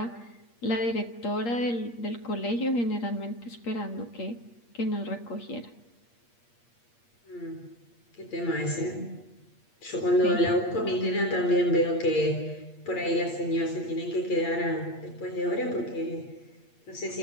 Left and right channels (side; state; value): right; late; 8.5 ms